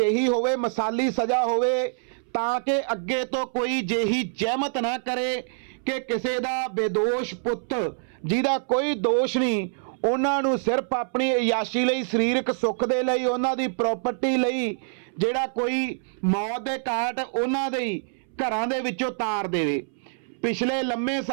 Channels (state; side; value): silent; left; 61 dB below the other